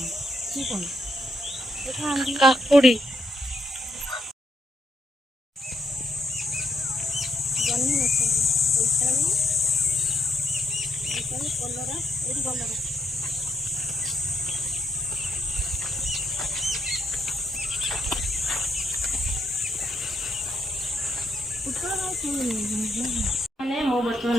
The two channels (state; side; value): normal; both; correlation 0.78